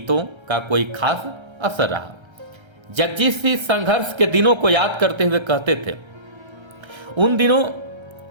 का कोई खास असर रहा। जगजीत सिंह संघर्ष के दिनों को याद करते हुए कहते थे, उन दिनों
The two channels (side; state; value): left; late; 1.3 ms